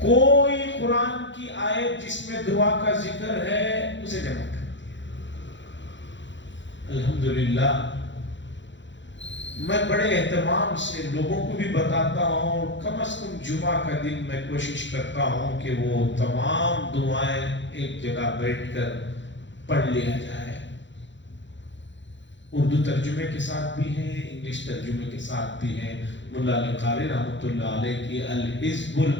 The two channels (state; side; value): late; right; 0.54 ms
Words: قرآن کی آیت جس میں دعا کا ذکر ہے اسے جمع کر دیا۔ الحمدللہ میں بڑے اہتمام سے لوگوں کو بھی بتاتا ہوں، کم از کم جمعہ کا دن میں کوشش کرتا ہوں کہ وہ تمام دعائیں ایک جگہ بیٹھ کر پڑھ لیا جائے۔ اردو ترجمے کے ساتھ بھی ہیں، انگلش ترجمے کے ساتھ بھی ہیں۔ ملا علی قاری رحمۃ اللہ علیہ کی الحزب